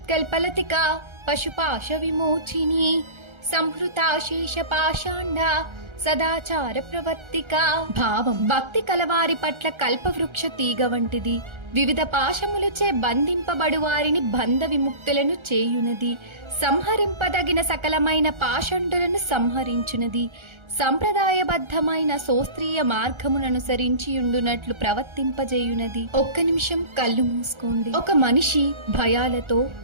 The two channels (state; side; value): late; left; 1.3 ms